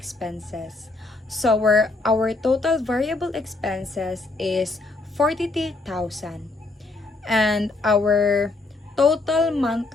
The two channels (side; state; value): right; quieter; 3.3 dB